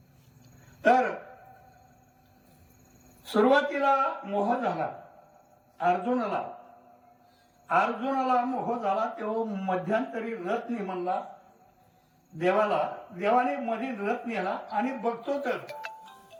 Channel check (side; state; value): both; identical; correlation 1.00